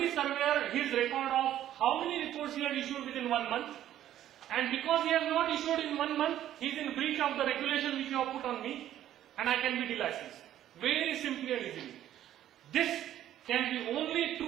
surveyor his record of how many reports he had issued within 1 month. And because he has not issued in 1 month, he is in breach of the regulation which you have put on me, and I can be delicensed. Very simply and easily. This can be only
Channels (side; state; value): left; quieter; 12.0 dB